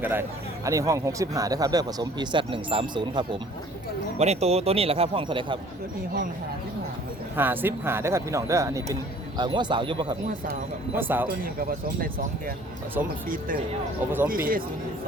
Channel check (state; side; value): normal; both; correlation 0.53